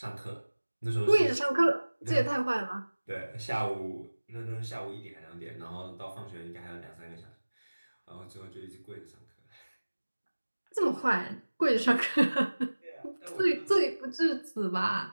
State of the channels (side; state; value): both; inverted; correlation -1.00